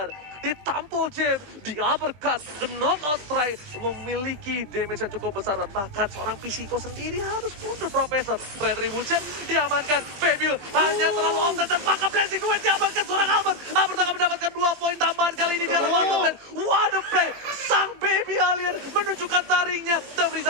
Ditampol Jim, di uppercut, the knockout strike memiliki damage yang cukup besar. Bahkan seorang Pisiko sendiri harus mundur. Profesor Retribution diamankan, Fabio hanya terlalu offset dan maka blessing duet diamankan seorang Albert. Albert akan mendapatkan 2 poin tambahan kali ini di arah bottom lane. What a play, sang baby alien menunjukkan taringnya. Dan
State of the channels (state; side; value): late; left; 20 ms